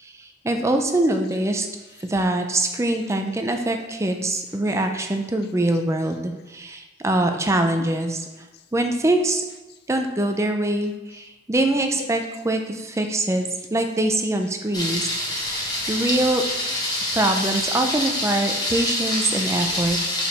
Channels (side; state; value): both; normal; correlation 0.57